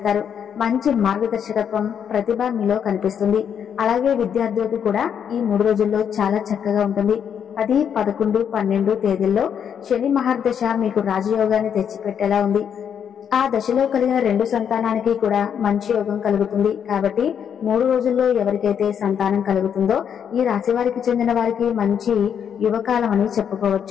మంచి మార్గదర్శకత్వం ప్రతిభ మీలో కనిపిస్తుంది. అలాగే విద్యార్థులకు కూడా ఈ 3 రోజుల్లో చాలా చక్కగా ఉంటుంది. 10, 11, 12 తేదీల్లో శని మహర్దశ మీకు రాజయోగాన్ని తెచ్చిపెట్టేలా ఉంది. ఆ దశలో కలిగిన 2 సంతానానికి కూడా మంచి యోగం కలుగుతుంది. కాబట్టి 3 రోజుల్లో ఎవరికైతే సంతానం కలుగుతుందో ఈ రాశి వారికి చెందిన వారికి మంచి యువకాలం అని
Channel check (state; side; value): quieter; right; 8.1 dB